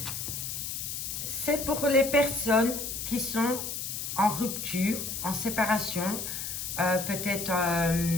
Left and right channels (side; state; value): left; noise; hiss, 5 dB below the sound